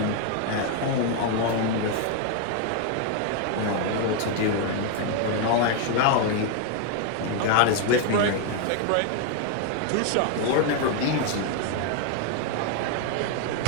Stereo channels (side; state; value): both; different; correlation 0.01